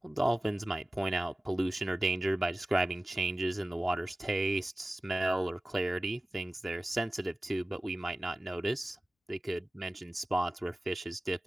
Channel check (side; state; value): both; normal; correlation 0.96